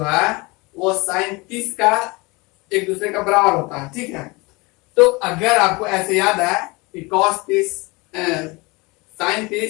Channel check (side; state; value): right; quieter; 25.2 dB